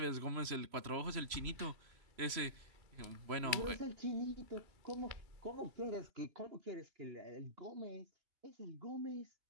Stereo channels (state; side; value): late; left; 3.0 ms